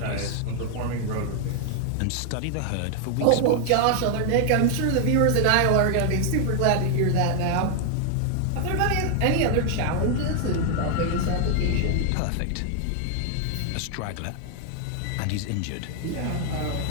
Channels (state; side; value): different; both; correlation 0.00